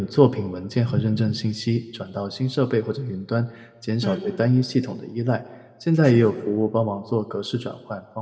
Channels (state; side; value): identical; both; correlation 1.00